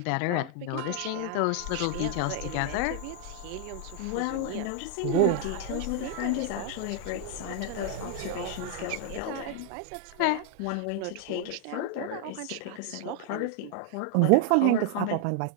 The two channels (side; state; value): both; different; correlation 0.00